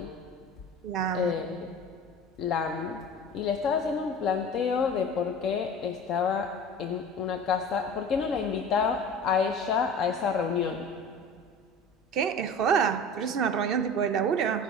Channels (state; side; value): normal; both; correlation 0.38